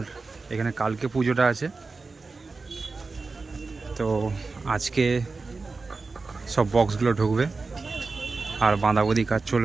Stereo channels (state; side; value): quieter; left; 4.0 dB